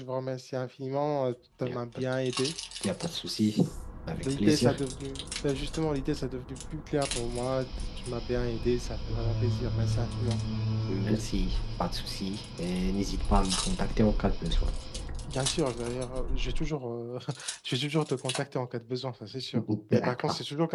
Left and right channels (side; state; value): both; identical; correlation 1.00